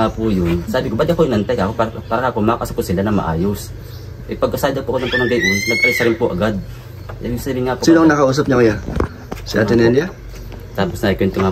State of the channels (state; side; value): identical; both; correlation 1.00